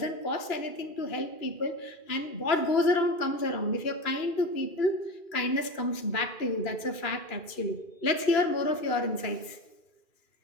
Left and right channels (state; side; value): late; right; 2.4 ms